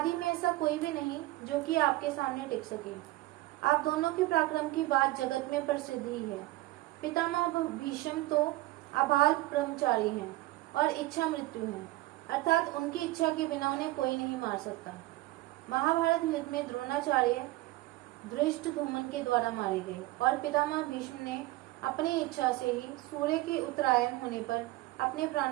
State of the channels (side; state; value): left; quieter; 18.4 dB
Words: में ऐसा कोई भी नहीं जो कि आपके सामने टिक सके। आप दोनों के पराक्रम की बात जगत में प्रसिद्ध ही है। पितामह भीष्म तो अबाल ब्रह्मचारी हैं और इच्छा मृत्यु है, अर्थात उनकी इच्छा के बिना उन्हें कोई नहीं मार सकता। महाभारत युद्ध में द्रोणाचार्य धृष्टद्युम्न के द्वारा मारे गए और पितामह भीष्म ने अपनी इच्छा से ही सूर्य के उत्तरायण होने पर अपने